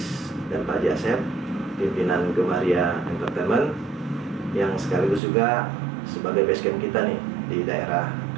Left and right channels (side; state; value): left; drops out; at 5.2 s